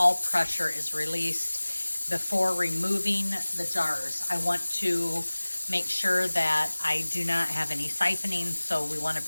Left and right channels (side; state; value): both; inverted; correlation -1.00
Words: pressure is released before removing the jars. I want to make sure that I do not have any siphoning, so we want to